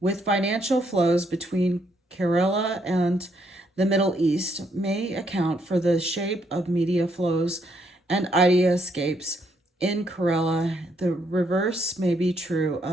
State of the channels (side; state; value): both; normal; correlation 0.73